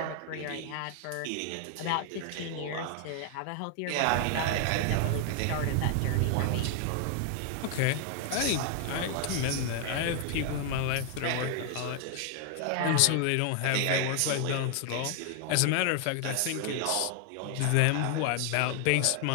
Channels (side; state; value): both; different; correlation 0.00